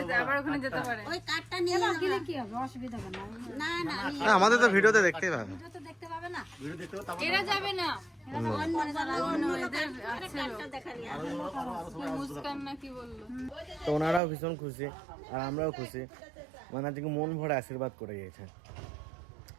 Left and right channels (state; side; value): drops out; left; at 14.2 s